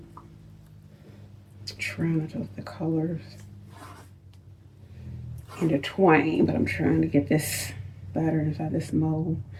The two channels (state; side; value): identical; both; correlation 1.00